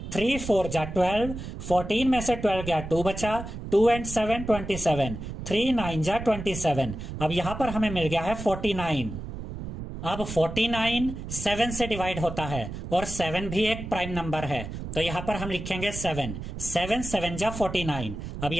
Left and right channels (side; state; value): right; noise; rumble, 8 dB below the sound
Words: 3 4 जा 12, 14 में से 12 गया 2 बचा, 2 एंड 7 27, 3 9 जा 27। अब यहां पर हमें मिल गया है 49। अब 49 7 से डिवाइड होता है और 7 भी एक प्राइम नंबर है, तो यहां पर हम लिखेंगे 7। 7 7 जा 49। अब